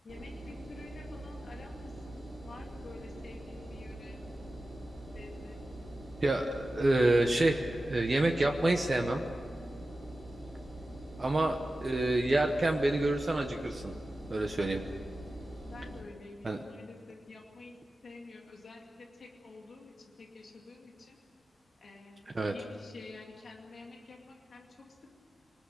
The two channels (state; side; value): normal; both; correlation 0.94